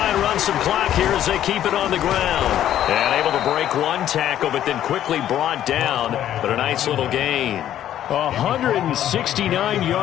and run some clock here as they keep it on the ground. And able to break one tackle, but then quickly brought down. But a nice little gain. 169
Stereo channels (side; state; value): right; quieter; 11.5 dB